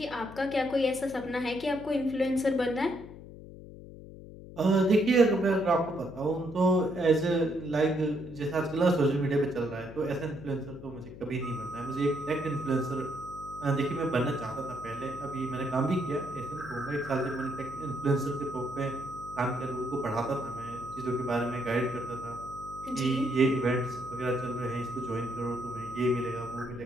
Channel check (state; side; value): noise; left; hum, 15 dB below the sound